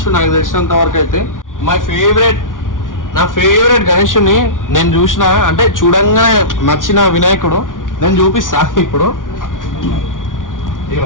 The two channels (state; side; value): late; right; 0.88 ms